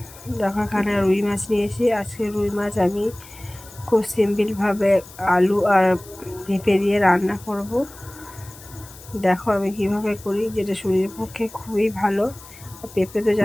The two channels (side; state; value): left; noise; hiss, 19 dB below the sound